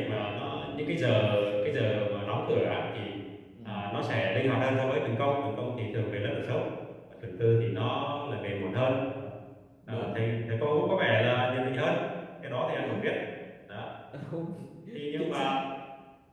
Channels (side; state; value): both; identical; correlation 1.00